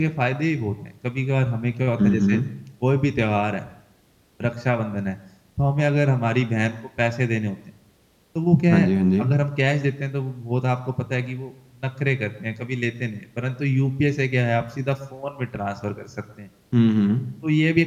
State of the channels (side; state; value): both; identical; correlation 1.00